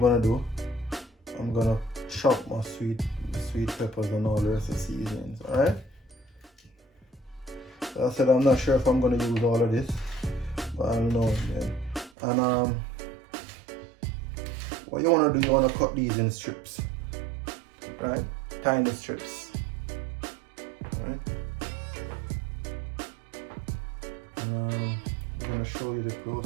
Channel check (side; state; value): left; drops out; at 12.1 s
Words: do, I'm gonna chop my sweet peppers and all the rest of the seasonings. Alright? So I said I'm not sure if I'm gonna use all of this, but I'll know again. And what you wanna do, you wanna cut these in strips. Right? Tiny strips. Right? And I'm gonna show you the